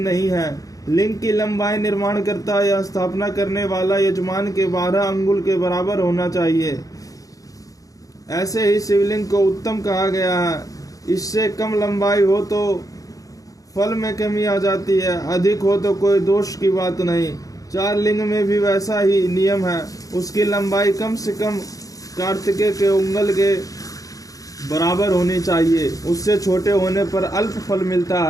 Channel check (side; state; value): right; late; 0.17 ms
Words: है। लिंग की लंबाई निर्माण करता या स्थापना करने वाला यजमान के 12 अंगुल के बराबर होना चाहिए। ऐसे ही शिवलिंग को उत्तम कहा गया है। इससे कम लंबाई हो तो फल में कमी आ जाती है, अधिक हो तो कोई दोष की बात नहीं। 4 लिंग में भी वैसा ही नियम है। उसकी लंबाई कम से कम कार्तिकेय के उंगल के बराबर होनी चाहिए। उससे छोटे होने पर अल्प फल मिलता